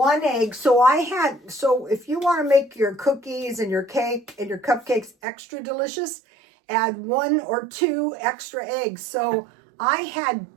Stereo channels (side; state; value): left; drops out; at 5.1 s